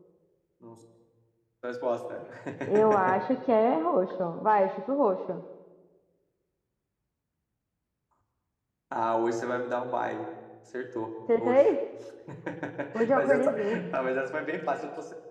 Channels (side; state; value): both; identical; correlation 1.00